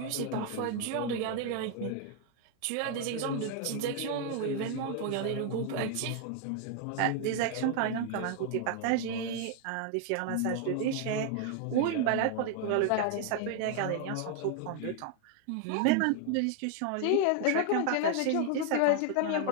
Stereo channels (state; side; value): different; both; correlation 0.00